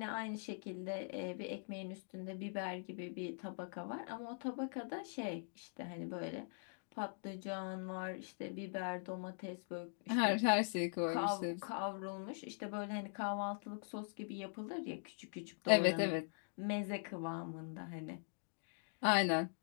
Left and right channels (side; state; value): right; silent; digital silence